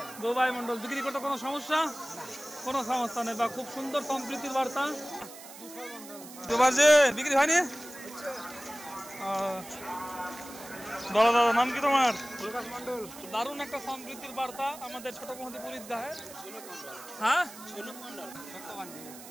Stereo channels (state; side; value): noise; right; hiss, 16 dB below the sound